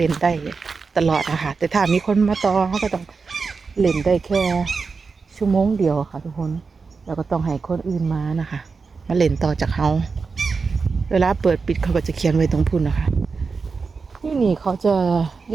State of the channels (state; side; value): quieter; left; 4.8 dB